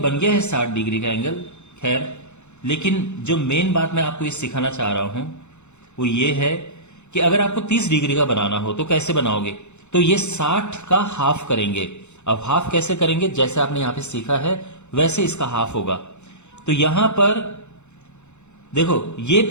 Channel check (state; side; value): late; right; 0.83 ms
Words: गया है 60 डिग्री का एंगल। खैर, लेकिन जो मेन बात मैं आपको ये सिखाना चाह रहा हूं वो ये है कि अगर आपको 30 डिग्री का बनाना हो तो कैसे बनाओगे? तो ये 60 का हाफ करेंगे। अब हाफ कैसे करेंगे? जैसे आपने यहां पे सीखा है वैसे इसका हाफ होगा। तो यहां पर देखो, ये